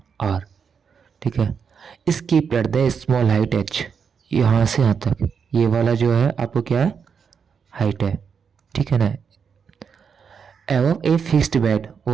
आर, ठीक है। इसकी at the small height H, यहाँ से यहाँ तक ये वाला जो है आपको क्या है, हाइट है, ठीक है ना। एवं a fixed bed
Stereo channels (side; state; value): left; quieter; 6.5 dB